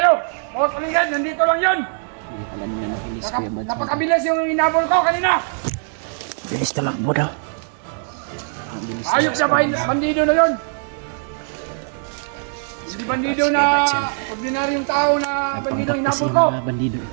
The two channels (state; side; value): silent; left; digital silence